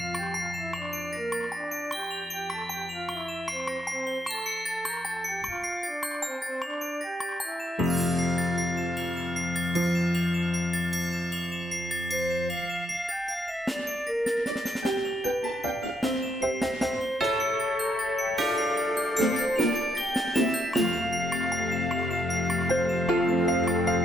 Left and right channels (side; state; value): both; normal; correlation 0.77